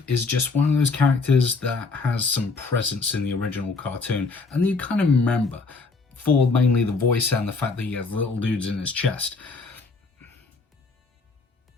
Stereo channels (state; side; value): quieter; right; 4.1 dB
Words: is just one of those characters that has some presence in the original cartoon, and you kind of remember for mainly the voice and the fact that he has little dudes in his chest.